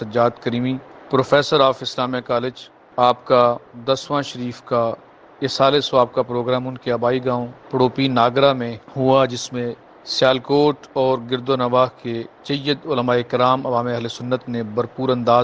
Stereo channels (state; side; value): identical; both; correlation 1.00